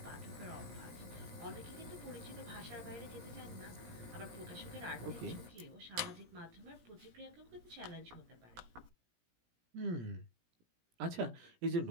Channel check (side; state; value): left; late; 17 ms